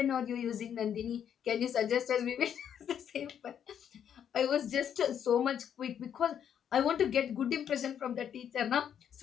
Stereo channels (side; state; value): right; quieter; 8.9 dB